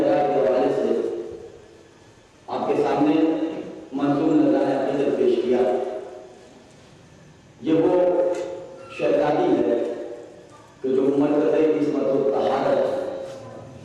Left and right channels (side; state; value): both; identical; correlation 1.00